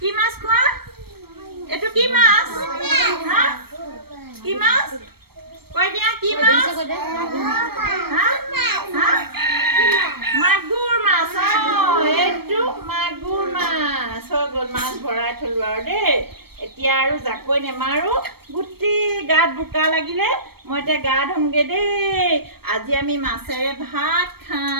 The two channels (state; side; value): late; left; 0.96 ms